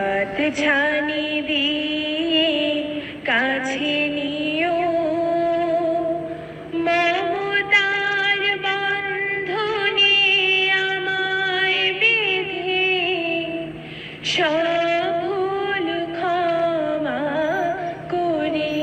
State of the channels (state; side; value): identical; both; correlation 1.00